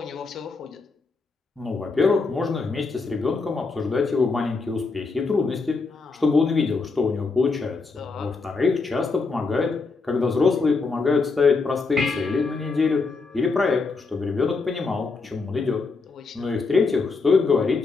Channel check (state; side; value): quieter; right; 4.2 dB